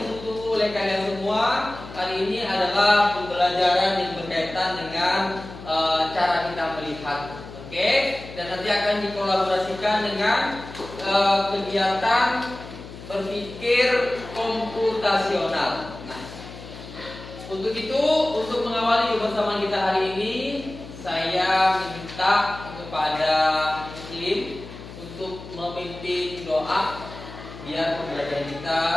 oleh kalian semua. Hari ini adalah pembelajaran yang berkaitan dengan cara kita melihat, oke? Dan nanti akan dikolaborasikan dengan kegiatan berpikir komputasional. Nah, untuk itu, untuk mengawali kebersamaan kita hari ini, saya minta kepada Muslim untuk memimpin doa biar pembelajaran kita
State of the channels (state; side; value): noise; left; hum, 14 dB below the sound